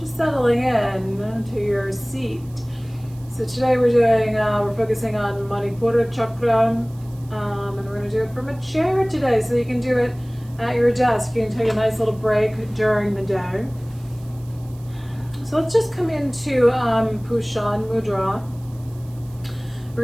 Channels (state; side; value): noise; right; hiss, 27 dB below the sound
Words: settling in to your seat. So today we're focusing on Manipura Charkra, and we're going to do it from a chair today. So you can do it at your desk. You can take a nice little break during the day. So let's just come into Pushan Mudra. We're